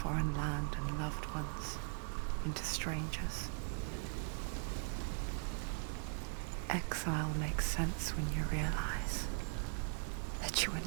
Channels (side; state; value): left; silent; 51 dB below the other